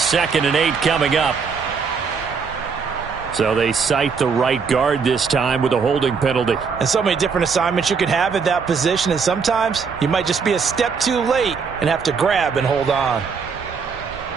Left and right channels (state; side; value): quieter; left; 5.6 dB